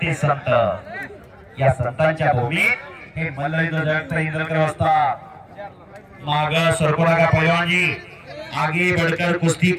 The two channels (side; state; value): both; identical; correlation 1.00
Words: ते संत। या संतांच्या भूमीत हे मल्लयुद्ध जगता इंद्रकर असतात। माग सरको लगा पहलवान जी, आगे बढ़कर कुश्ती